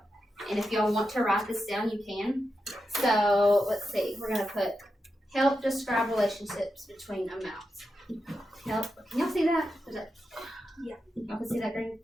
and if y'all want to write this down, you can. So let's see, we're gonna put help describe relationships between amounts. Help. Can y'all see that? Is that? Yeah. Y'all can see that green?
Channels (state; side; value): normal; both; correlation 0.88